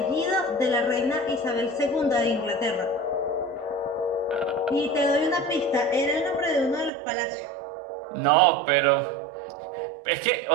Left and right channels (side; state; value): left; drops out; at 6.9 s